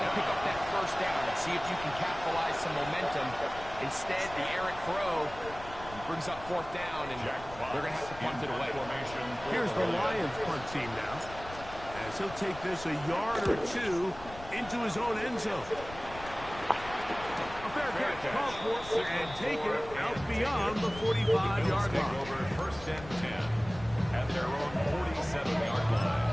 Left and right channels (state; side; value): noise; left; rumble, 15 dB below the sound